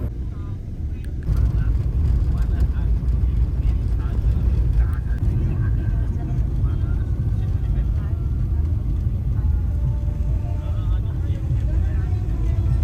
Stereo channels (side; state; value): both; identical; correlation 1.00